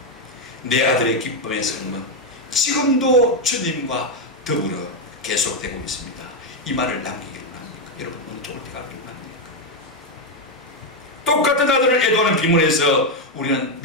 내 아들의 기쁨의 삶은 지금도 주님과 더불어 계속되고 있습니다, 이 말을 남기기를 합니까? 여러분, 어느 쪽을 택하기를 합니까? 똑같은 아들을 애도하는 비문에서 우리는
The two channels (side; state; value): both; normal; correlation 0.04